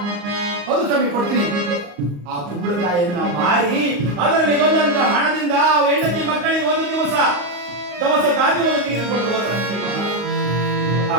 ಹೌದು ಸ್ವಾಮಿ, ಕೊಡ್ತೀನಿ. ಆ ಕುಂಬಳಕಾಯಿಯನ್ನ ಮಾರಿ ಅದರಲ್ಲಿ ಬಂದಂತ ಹಣದಿಂದ ಹೆಂಡತಿ ಮಕ್ಕಳಿಗೆ ಒಂದು ದಿವಸ ದವಸ ಧಾನ್ಯವನ್ನು ತೆಗೆದುಕೊಂಡು ಹೋದರಂತೆ. ಆ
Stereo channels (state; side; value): late; left; 34 ms